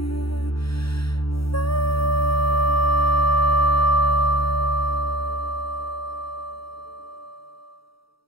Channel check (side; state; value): right; late; 0.75 ms